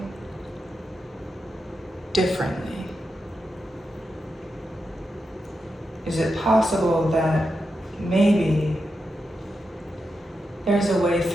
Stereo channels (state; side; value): normal; both; correlation 0.87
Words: differently? Is it possible that maybe there's a way